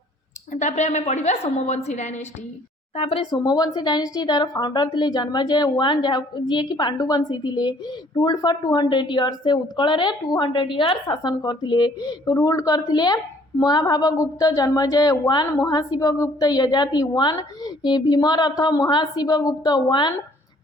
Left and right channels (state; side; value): normal; both; correlation 0.59